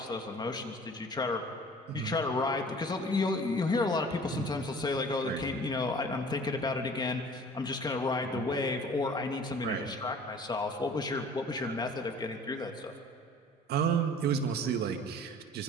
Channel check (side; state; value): both; normal; correlation 0.47